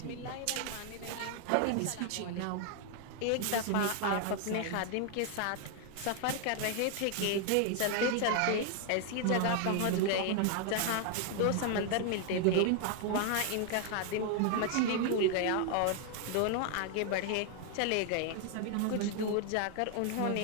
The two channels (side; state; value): both; different; correlation 0.00